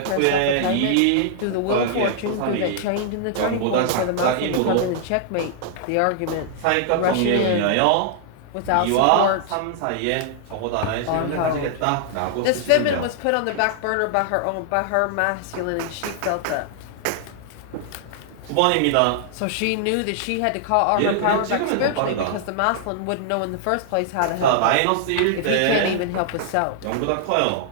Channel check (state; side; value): different; both; correlation -0.01